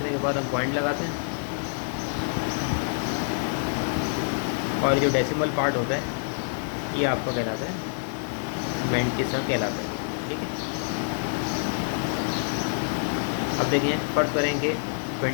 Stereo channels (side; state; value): right; silent; 60 dB below the other